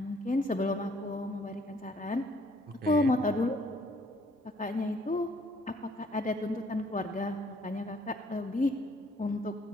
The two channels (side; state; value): both; normal; correlation 0.64